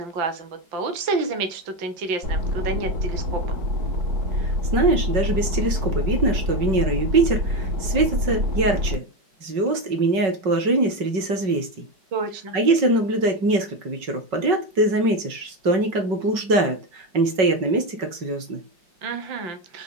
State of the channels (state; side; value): late; left; 5.3 ms